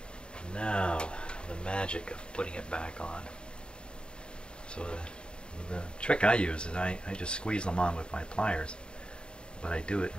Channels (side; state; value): right; late; 0.051 ms